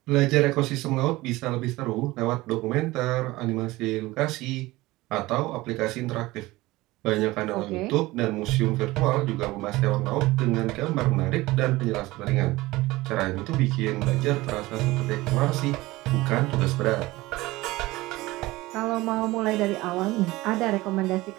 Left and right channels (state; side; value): quieter; left; 19.4 dB